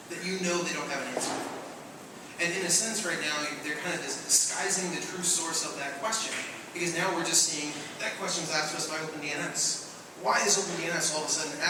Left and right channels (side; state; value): both; identical; correlation 1.00